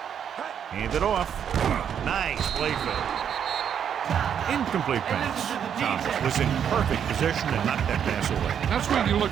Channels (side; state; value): left; quieter; 8.4 dB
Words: Hand it off. Nice play fake. Incomplete pass. Thomas was in perfect position and knocked that pass away. That's what you